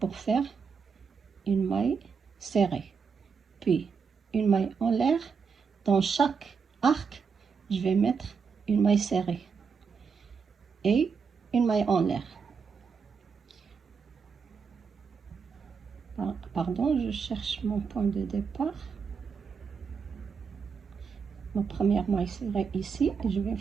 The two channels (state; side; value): quieter; left; 5.8 dB